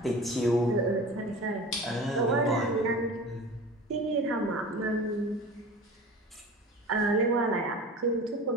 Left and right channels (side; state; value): both; normal; correlation 0.36